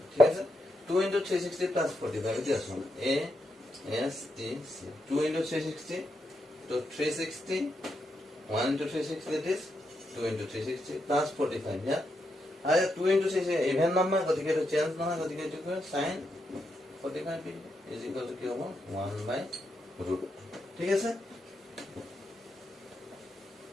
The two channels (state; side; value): normal; both; correlation 0.83